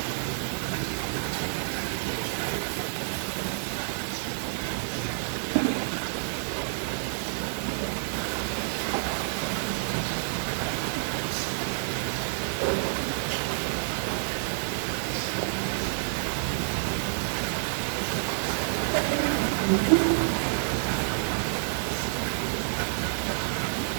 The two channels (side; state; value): left; silent; 59 dB below the other